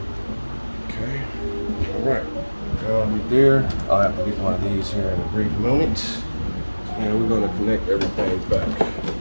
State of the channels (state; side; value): inverted; both; correlation -1.00